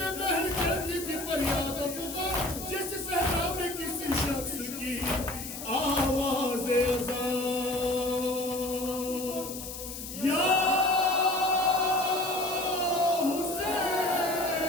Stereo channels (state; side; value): noise; left; hiss, 9 dB below the sound